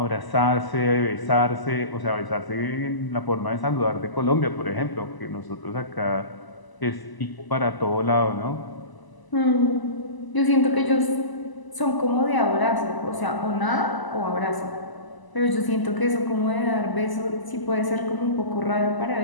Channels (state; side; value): late; right; 1.0 ms